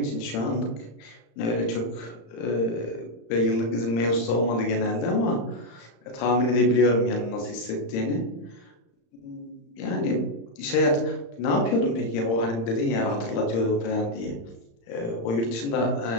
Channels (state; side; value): late; right; 35 ms